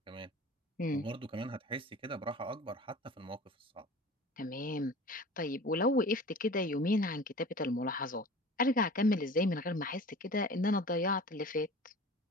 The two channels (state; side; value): normal; both; correlation 0.40